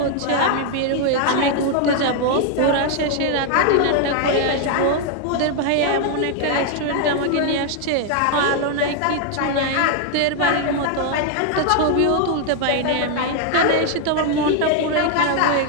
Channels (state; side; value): different; both; correlation 0.00